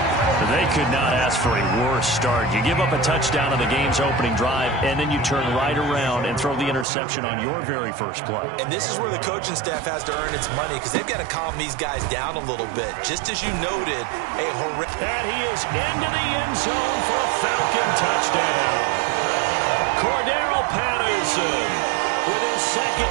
They could not ask for a worse start. You give up a touchdown on the game's opening drive, and then you turn right around and throw the interception on your very first play. And this is where the coaching staff has to earn its money, because they've got to calm these guys down a little bit. Just as you noted, a horrific... And he is into the end zone for a Falcon touchdown. Cordero Patterson with his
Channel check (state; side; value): drops out; left; at 6.9 s